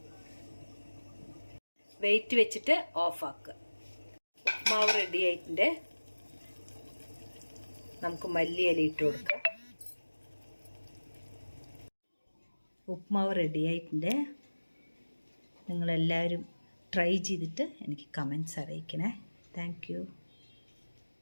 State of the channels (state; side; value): inverted; both; correlation -1.00